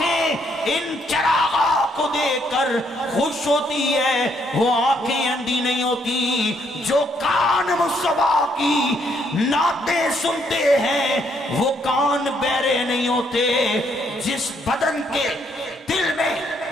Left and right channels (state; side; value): normal; both; correlation 0.71